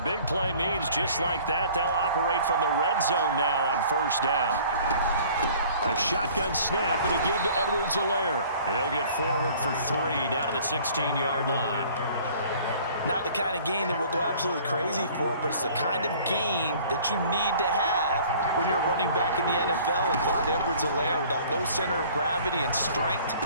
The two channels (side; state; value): both; inverted; correlation -0.51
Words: play means just like that, they'll operate from the red zone now on 1st down. A shotgun snap and a give to Edwards-Helaire. He'll get forward for 3 down to the 16-yard line. Not the kind of gain that we'll go absolutely crazy for, but it's the kind of gain that you need to have when you're running back in the NFL. And Clyde Edwards-Helaire with that low center of gravity and strength,